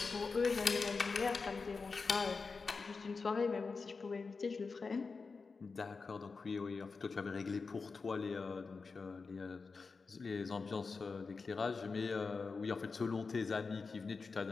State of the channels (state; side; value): quieter; right; 4.5 dB